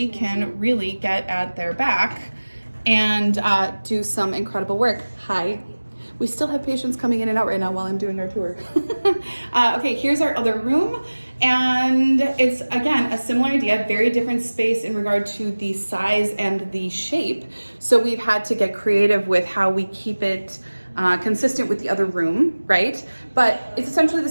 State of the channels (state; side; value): inverted; both; correlation -1.00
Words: can really get at their back and do some incredible work. Hi. We still have patients coming in and out right now while I'm doing our tour. Okay, here's our other room. And it's, again, a similar idea, very different space in regard to the size and the shape. So we've had to get creative with how we keep it consistent with the other room, right? But it's essentially the